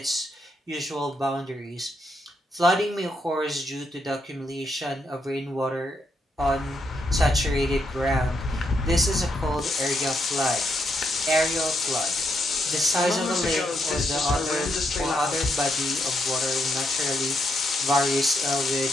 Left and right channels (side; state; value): both; normal; correlation 0.79